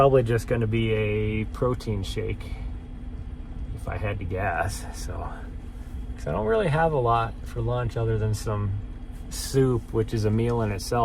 just going to be a protein shake, if I had to guess. So, 'cause I don't really have a lot for lunch other than some soup, which is a meal in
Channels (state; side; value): identical; both; correlation 1.00